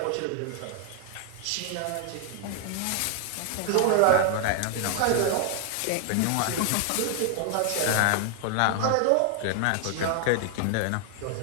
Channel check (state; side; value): different; both; correlation 0.00